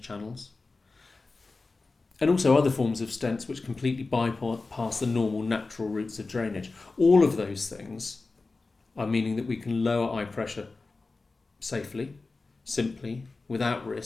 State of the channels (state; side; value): quieter; right; 3.7 dB